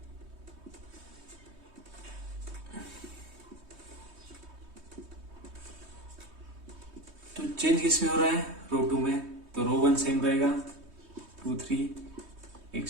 तो चेंज किस में हो रहा है, रो 2 में। तो रो 1 सेम रहेगा, 2 3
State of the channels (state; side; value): late; left; 3.2 ms